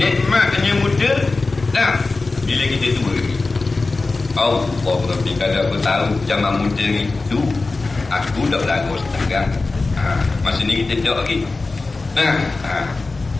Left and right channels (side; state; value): right; quieter; 3.6 dB